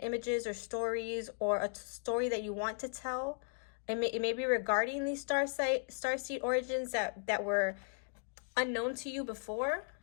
images or stories, or a story that you want to tell. It may be regarding these starseed origins that were unknown to you before,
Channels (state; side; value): silent; right; digital silence